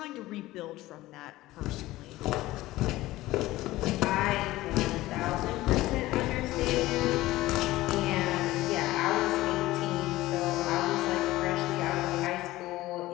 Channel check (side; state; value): right; quieter; 17.3 dB